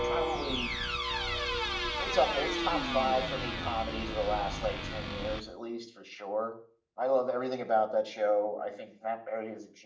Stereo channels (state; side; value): identical; both; correlation 1.00